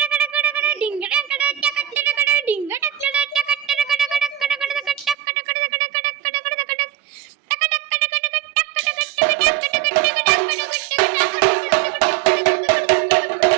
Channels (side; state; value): left; drops out; at 5.2 s